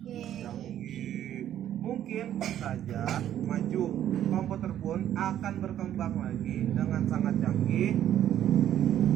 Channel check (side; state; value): left; quieter; 11.2 dB